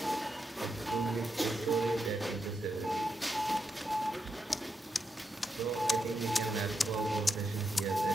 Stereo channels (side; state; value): both; normal; correlation 0.84